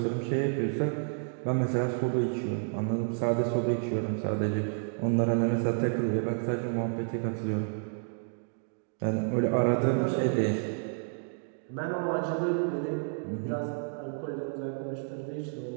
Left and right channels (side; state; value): left; silent; 58 dB below the other